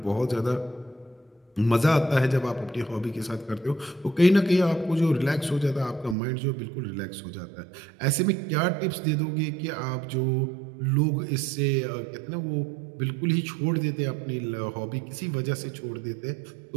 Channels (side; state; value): left; drops out; at 6.2 s